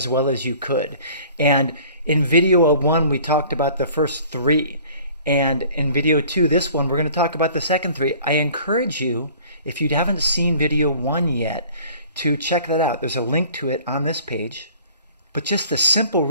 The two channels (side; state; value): both; inverted; correlation -0.50